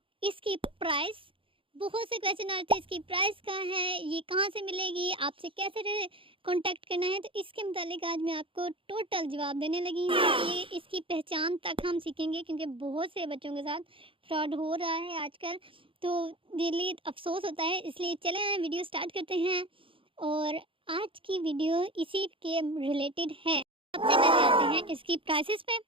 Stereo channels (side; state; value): left; late; 0.25 ms